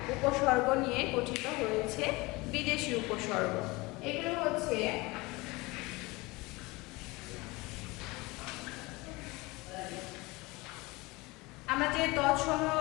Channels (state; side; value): quieter; right; 23.3 dB